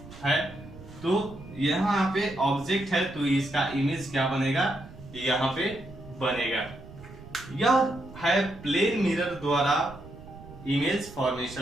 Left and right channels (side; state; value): right; noise; rumble, 17 dB below the sound